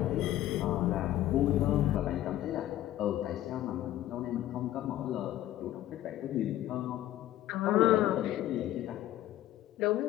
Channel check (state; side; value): quieter; right; 13.6 dB